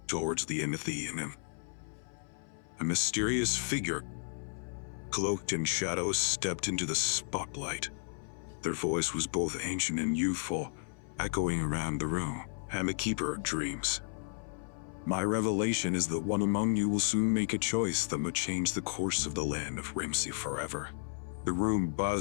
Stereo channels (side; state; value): right; silent; 55 dB below the other